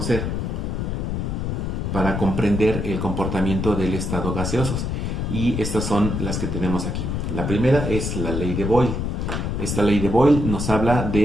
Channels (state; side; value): noise; left; rumble, 2 dB below the sound